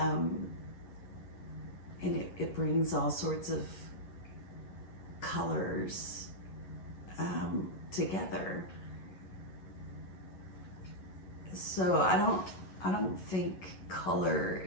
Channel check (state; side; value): late; right; 11 ms